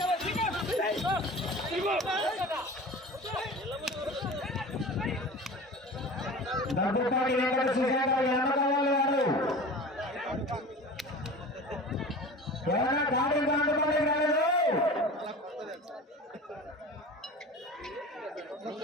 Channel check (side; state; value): both; normal; correlation 0.36